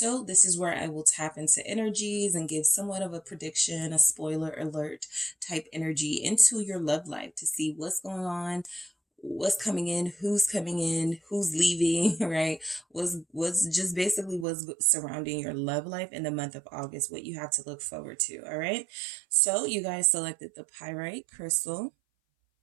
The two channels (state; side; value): drops out; left; at 14.5 s